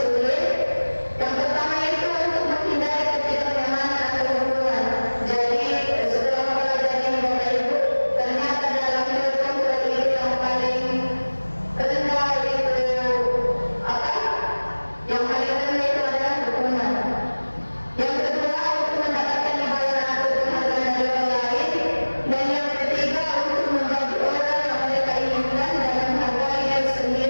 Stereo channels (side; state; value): both; inverted; correlation -1.00